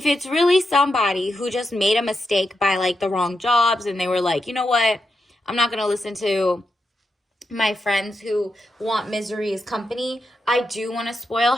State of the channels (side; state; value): both; normal; correlation 0.85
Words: it's really somebody who just made a mistake by like the wrong jobs, and they were like, you know what, I'm not going to listen to my friends who want misery as company. I do want to spoil